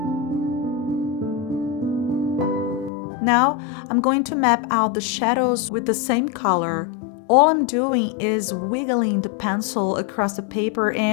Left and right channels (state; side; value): drops out; right; at 2.9 s